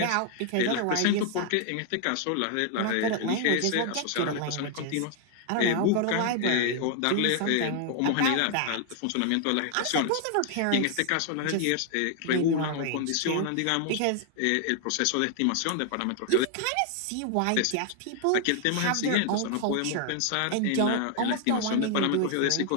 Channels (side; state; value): both; different; correlation 0.00